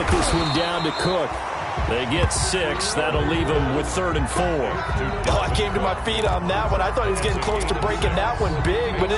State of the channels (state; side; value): identical; both; correlation 1.00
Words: this one down to Cook. They get 6. That'll leave him with 3rd and 4. Oh, I came to my feet on that one. I thought he was getting close to breaking that one big, but